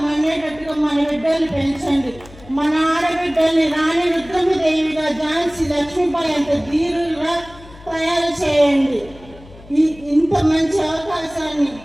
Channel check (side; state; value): left; noise; hum, 21 dB below the sound